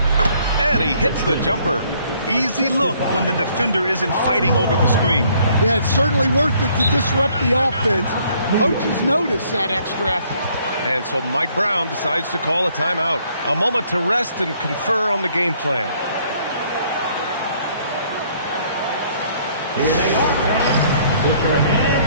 And he hits the jumper. Easy look when the defender isn't fighting over the screen. Yeah, it's certainly worth it to disrupt the offense. Coaches notice that extra effort. And so Mike Brown decides to call a timeout. A moment to rest and confer on the game plan. Here they are, fans. Put your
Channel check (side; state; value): both; inverted; correlation -0.64